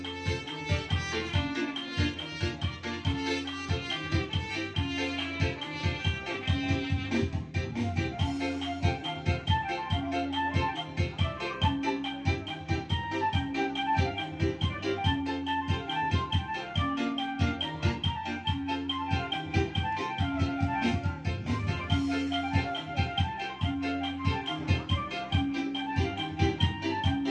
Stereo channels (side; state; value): both; identical; correlation 1.00